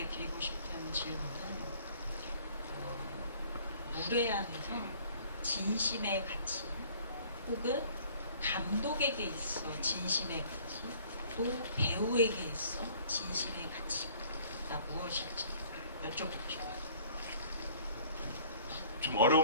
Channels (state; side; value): inverted; both; correlation -0.54